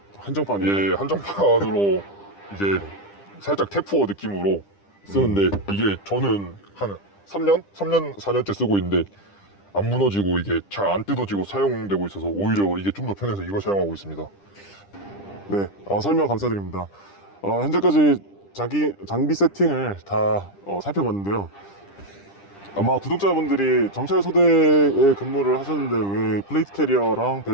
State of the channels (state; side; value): late; right; 10 ms